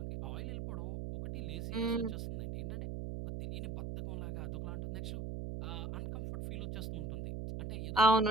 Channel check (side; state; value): right; noise; hum, 4 dB below the sound